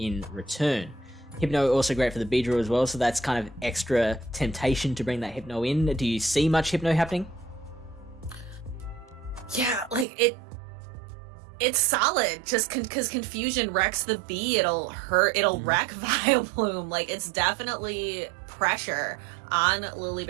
return. Hypno also great for the Beedrill as well, so that's kind of extra temptation to bring that Hypno in. Do you see much Hypno happening? Yeah, like it's solid, just because Confusion wrecks the Bee, it'll wreck Vileplume. Like, it's definitely pressure on Lily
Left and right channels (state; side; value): drops out; left; at 10.1 s